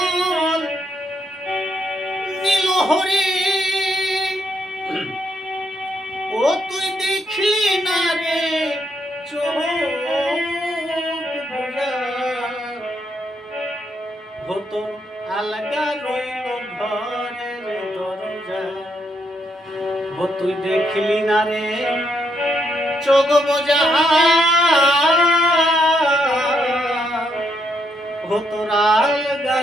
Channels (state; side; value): normal; both; correlation 0.76